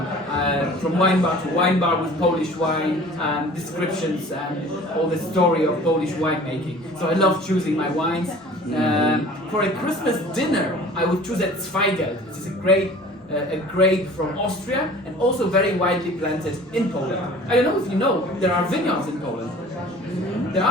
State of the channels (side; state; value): both; normal; correlation 0.46